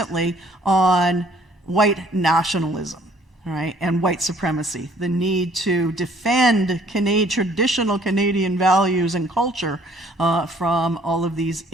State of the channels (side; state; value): both; normal; correlation 0.59